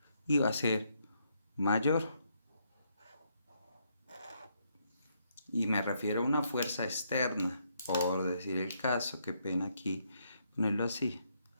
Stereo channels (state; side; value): inverted; both; correlation -0.75